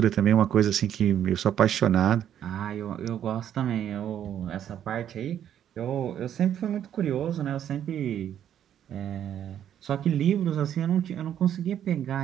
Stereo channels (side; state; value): left; quieter; 10.1 dB